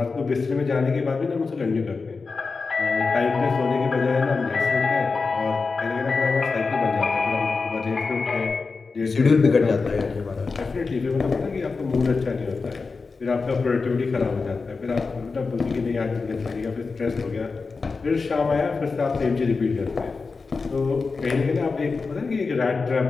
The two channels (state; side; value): quieter; right; 4.4 dB